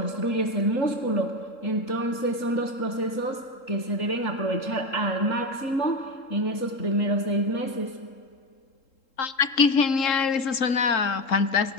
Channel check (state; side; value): late; right; 3.7 ms